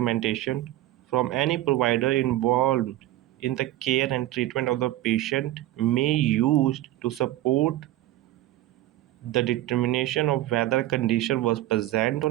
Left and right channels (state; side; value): quieter; left; 15.2 dB